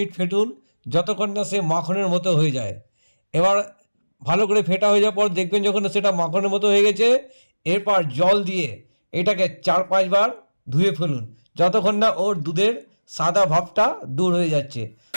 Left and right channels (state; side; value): inverted; both; correlation -1.00